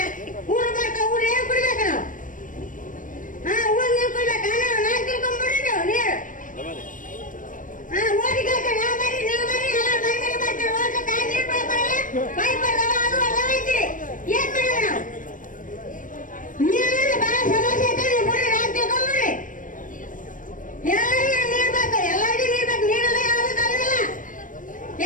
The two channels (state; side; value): late; right; 0.38 ms